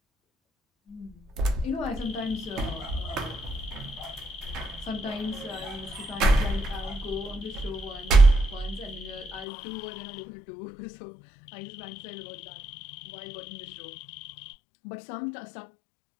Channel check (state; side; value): drops out; right; at 9.5 s